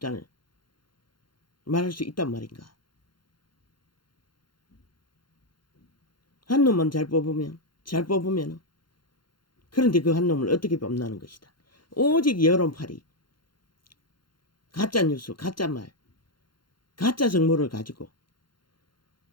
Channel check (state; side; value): late; right; 0.72 ms